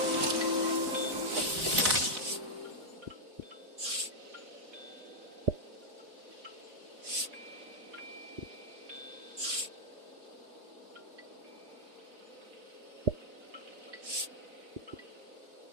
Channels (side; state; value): left; late; 4.0 ms